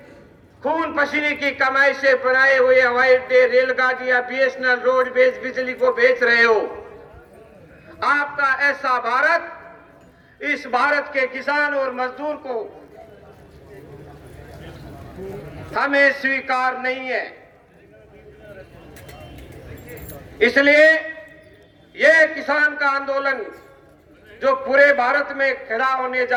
खून पसीने की कमाई से बनाए हुए हवाई अड्डे, रेलगाड़ियां, बीएसएनएल, रोडवेज, बिजली को बेच रहे हो? आपका ऐसा भारत इस भारत के किसान और मजदूर को हमें स्वीकार नहीं है। इसलिए यह किसान का आंदोलन जो पूरे भारत में खड़ा होने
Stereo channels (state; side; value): identical; both; correlation 1.00